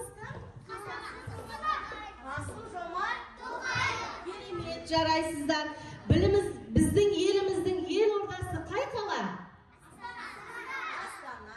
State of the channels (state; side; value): identical; both; correlation 1.00